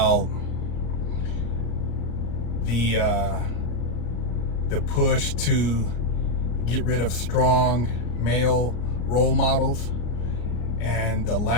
the push to get rid of strong male role models and the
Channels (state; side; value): late; right; 34 ms